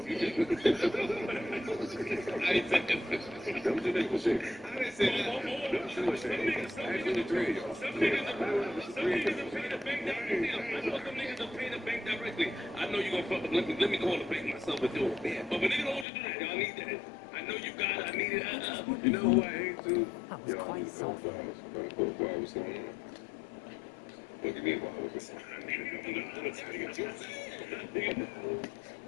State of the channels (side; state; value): right; drops out; at 16.1 s